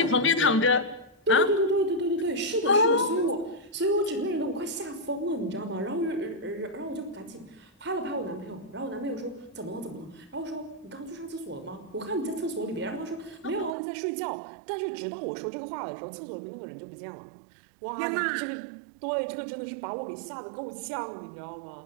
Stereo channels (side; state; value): left; drops out; at 13.8 s